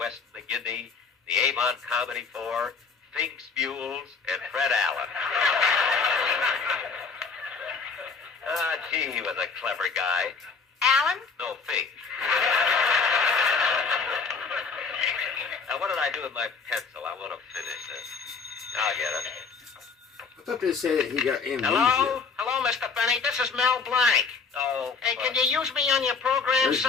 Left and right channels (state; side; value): quieter; right; 5.1 dB